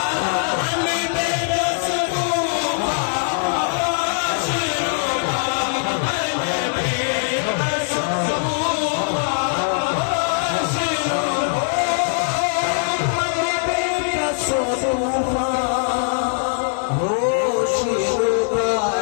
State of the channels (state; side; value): silent; right; digital silence